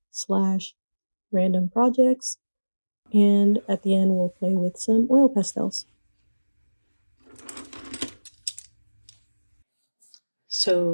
slash random projects, and at the end we'll play with some oil pastels.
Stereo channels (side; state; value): both; inverted; correlation -1.00